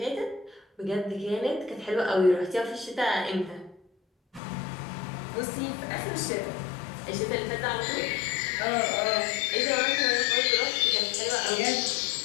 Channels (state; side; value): drops out; right; at 4.4 s